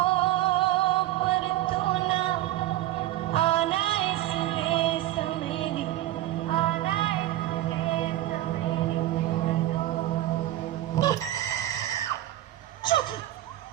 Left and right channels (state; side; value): quieter; left; 14.8 dB